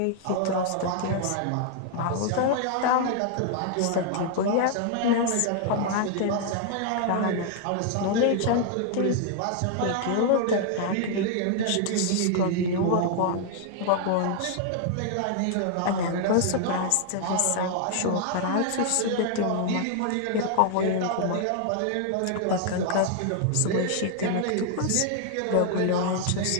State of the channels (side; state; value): both; different; correlation 0.00